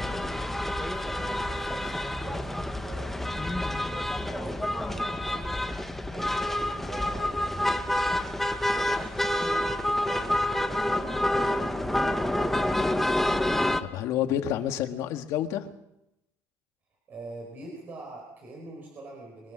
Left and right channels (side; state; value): both; normal; correlation 0.88